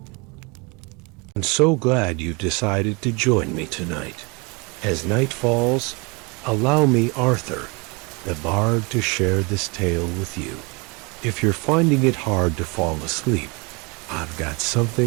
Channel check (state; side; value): quieter; left; 29.2 dB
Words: I'm so glad you've decided to join me tonight. As night falls, allow me, Arthur, the bard, to share this tale with you. If you're finding it hard to fall asleep, I've got